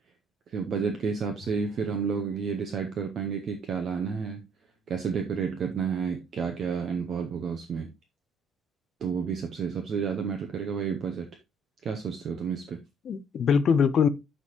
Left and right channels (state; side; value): normal; both; correlation 0.62